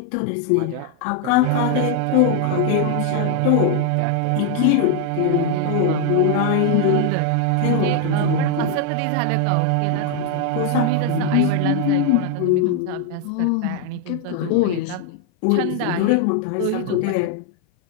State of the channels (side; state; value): both; different; correlation 0.00